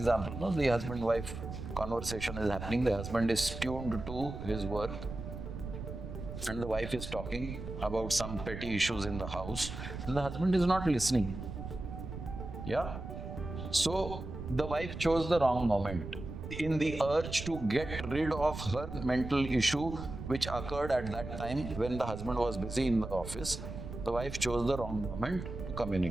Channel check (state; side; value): noise; right; rumble, 8 dB below the sound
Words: no? The husband-wife conversation is happening, the husband is tuned to his work, and the wife is talking about some petty issues in the house, and the husband is not listening. Yeah? So the wife chose the wrong moment. In the urge to get rid of her mental issue which occurred at that time when the husband was busy in the office, the wife chose the wrong moment to